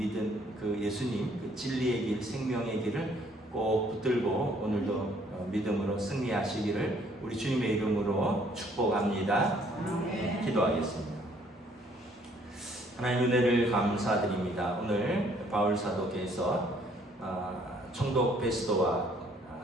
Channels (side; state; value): both; normal; correlation 0.63